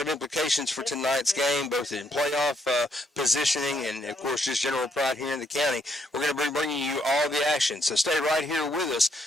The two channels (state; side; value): normal; both; correlation 0.73